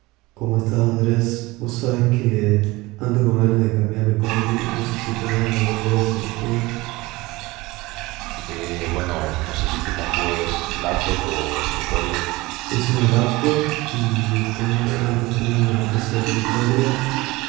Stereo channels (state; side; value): quieter; left; 21.3 dB